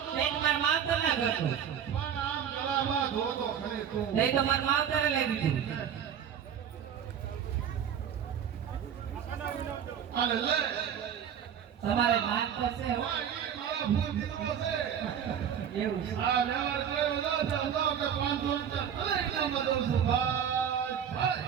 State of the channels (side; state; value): left; quieter; 8.6 dB